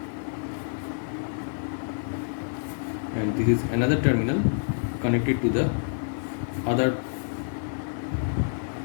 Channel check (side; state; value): right; silent; 60 dB below the other